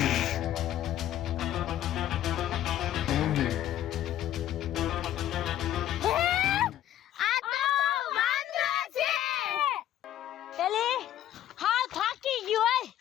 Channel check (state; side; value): quieter; right; 12.1 dB